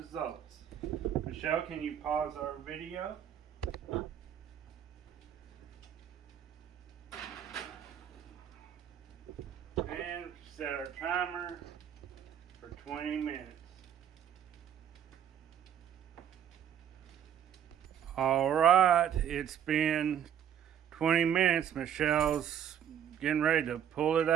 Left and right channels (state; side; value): quieter; left; 9.4 dB